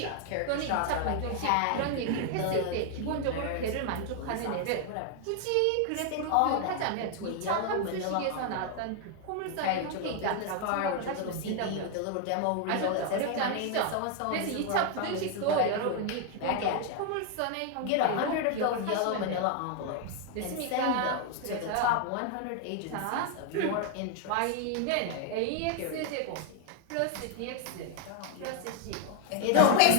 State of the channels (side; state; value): both; different; correlation 0.00